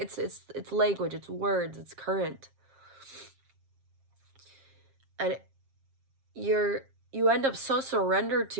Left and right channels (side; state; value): left; late; 7.5 ms